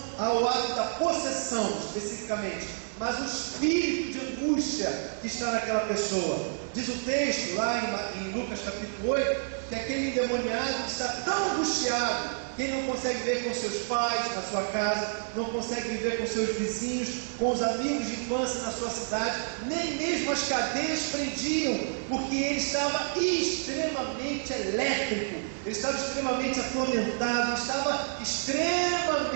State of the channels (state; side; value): silent; left; digital silence